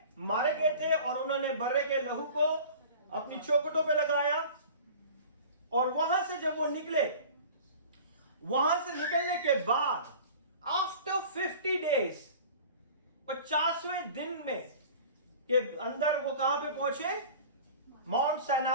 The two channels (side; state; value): both; inverted; correlation -0.42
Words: मारे गए थे और उन्होंने बर्रे के लहू को अपनी चौखटों पे लगाया। और वहां से जब वो निकले, वहां से निकलने के बाद आफ्टर 50 डेज, 50वें दिन में के अंदर वो कहां पे पहुंचे? माउंट